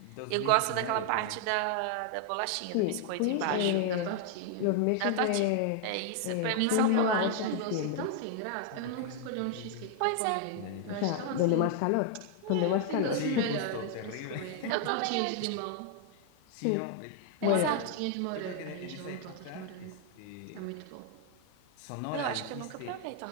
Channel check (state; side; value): different; both; correlation 0.00